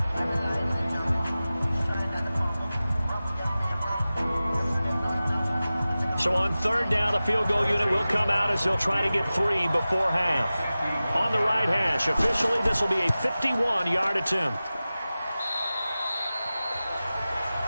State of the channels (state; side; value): inverted; both; correlation -0.96